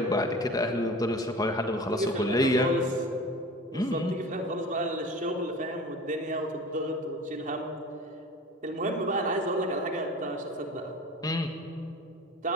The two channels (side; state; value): both; normal; correlation 0.38